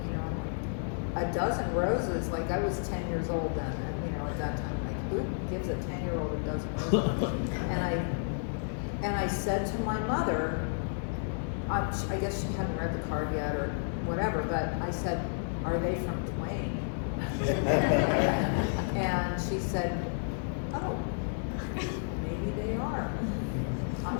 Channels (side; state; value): right; silent; 57 dB below the other